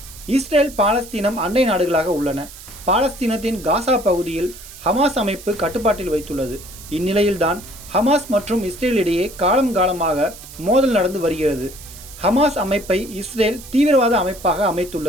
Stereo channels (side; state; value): right; noise; hiss, 17 dB below the sound